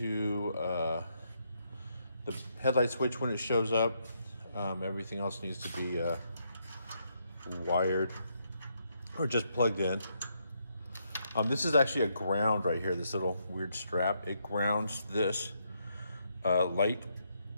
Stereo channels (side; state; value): both; inverted; correlation -0.77